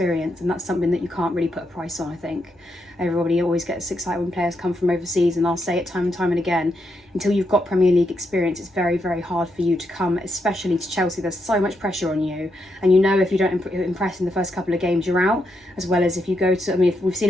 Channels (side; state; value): both; normal; correlation 0.81